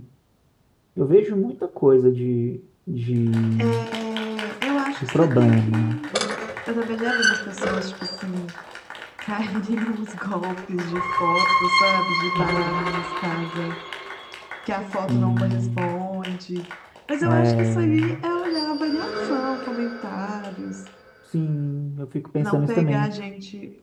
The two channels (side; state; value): both; identical; correlation 1.00